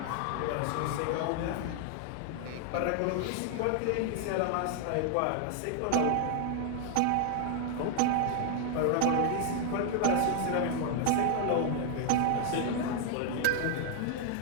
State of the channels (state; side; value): different; both; correlation 0.00